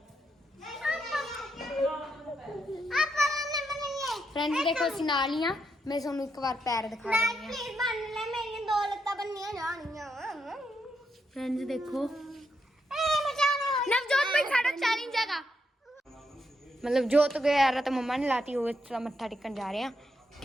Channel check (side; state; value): both; normal; correlation 0.80